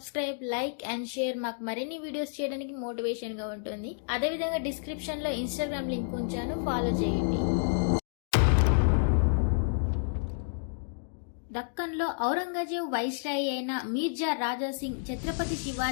లైక్ అండ్ షేర్ మాకు మరిన్ని వీడియోస్ చేయడానికి మోటివేషన్ గా ఉంటుంది. అదేవిధంగా డిస్క్రిప్షన్ లో ఇన్స్టాగ్రామ్ లింక్ ఉంచాను, ఫాలో చేయండి. దక్కన్లో ఔరంగజేబు వైస్రాయి అయిన మీర్జా రాజా సింగ్ ఛత్రపతి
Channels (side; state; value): right; silent; digital silence